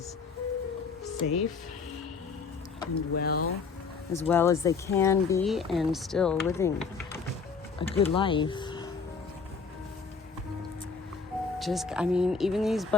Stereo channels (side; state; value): right; quieter; 5.1 dB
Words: safe and well as they can be, and still living a good life. Even these